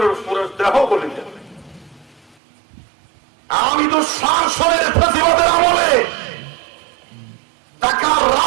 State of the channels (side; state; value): left; drops out; at 2.4 s